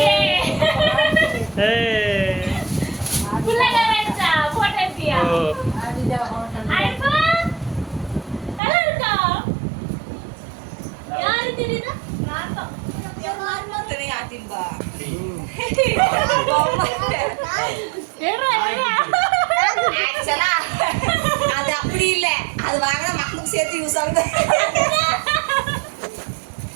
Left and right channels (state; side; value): drops out; left; at 8.6 s